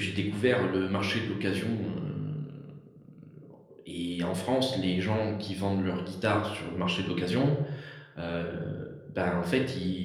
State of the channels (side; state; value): both; identical; correlation 1.00